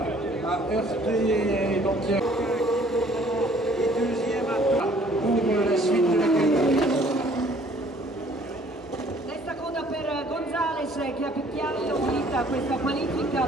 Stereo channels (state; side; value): normal; both; correlation 0.57